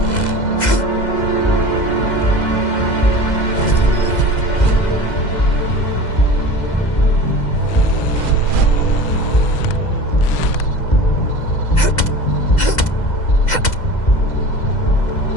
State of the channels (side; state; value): right; late; 2.0 ms